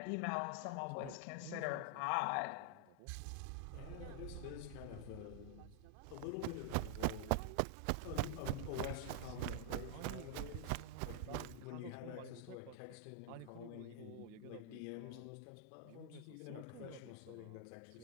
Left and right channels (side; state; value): both; different; correlation -0.01